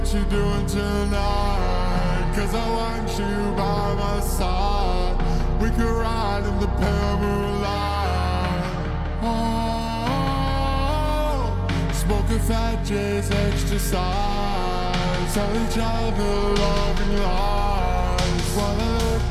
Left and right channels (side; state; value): both; identical; correlation 1.00